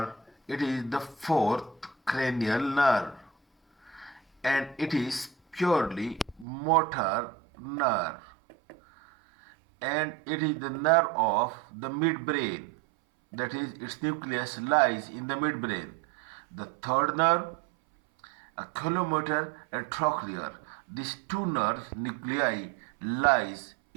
it is the fourth cranial nerve, and it is purely motor nerve, and it is the nerve of the midbrain. That is, its nucleus lies in the midbrain. The third nerve, oculomotor and trochlear. These two nerve nuclei lies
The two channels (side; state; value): left; drops out; at 6.5 s